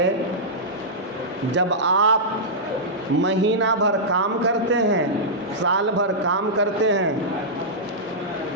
جب آپ مہینہ بھر کام کرتے ہیں، سال بھر کام کرتے ہیں،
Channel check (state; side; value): normal; both; correlation -0.12